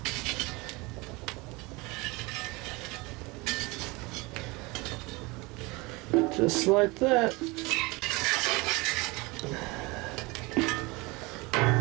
Just like that.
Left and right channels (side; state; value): left; quieter; 24.6 dB